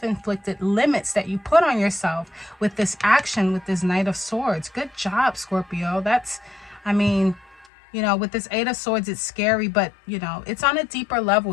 limits that you put on yourself with this action, with this Knight of Swords. Good job, Scorpio. That's, I mean, you know, with this Eight of Swords, it's scary, but, you know, it's on a deeper level.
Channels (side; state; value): right; drops out; at 7.7 s